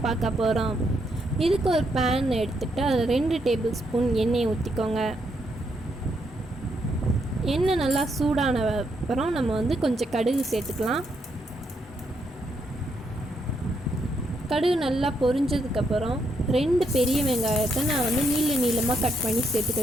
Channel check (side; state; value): both; normal; correlation 0.77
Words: பார்க்க போகிறோம். இதுக்கு ஒரு பேன் எடுத்துகிட்டு அதில் 2 டேபிள் ஸ்பூன் எண்ணெயை ஊற்றிக்கோங்க. எண்ணெய் நல்லா சூடான அப்புறம் நம்ம கொஞ்சம் கடுகு சேர்த்துக்கலாம். கடுகு நல்லா பொரிஞ்சதுக்கப்புறம் 2 பெரிய வெங்காயத்தை நான் நீளமாக கட் பண்ணி